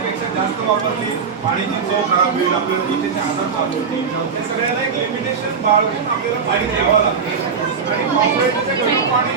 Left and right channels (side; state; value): left; quieter; 5.9 dB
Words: जास्त वापरली पाण्याची चव खराब होईल, आपल्याला त्वचेचे आजार चालू होतील. या सगळ्याला एक लिमिटेशन बाळगून आपल्याला पाणी द्यावं लागते. आणि पावसाळ्याचं गढूळ पाणी